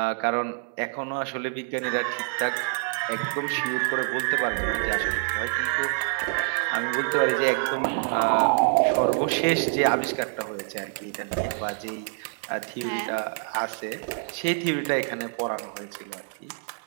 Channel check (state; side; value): silent; left; digital silence